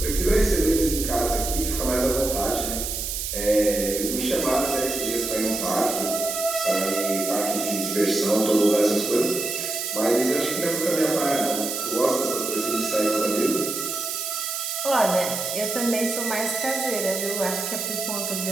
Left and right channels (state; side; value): noise; right; hiss, 3 dB below the sound